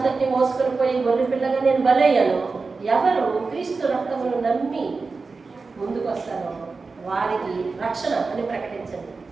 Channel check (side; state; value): left; quieter; 4.2 dB